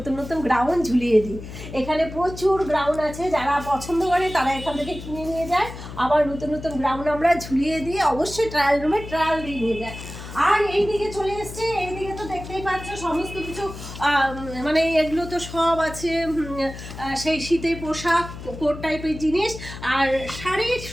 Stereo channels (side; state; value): left; noise; hum, 12 dB below the sound